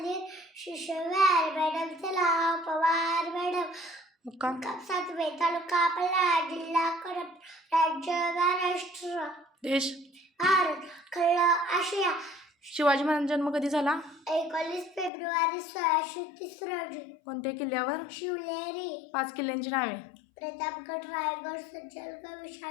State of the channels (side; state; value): right; drops out; at 15.1 s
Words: शिशुवार. मॅडमचे नाव पवार मॅडम. मुक्काम 7वे. तालुका पल्हाळ. जिल्हा कोल्हापूर. राज्य महाराष्ट्र. देश भारत. खंड आशिया. शिवाजी महाराजांचा जन्म कधी झाला? 19 फेब्रुवारी 1630 रोजी. कोणत्या किल्ल्यावर? शिवनेरी. 5 किल्ल्यांची नावे. प्रतापगड. रायगड. सज्जनगड.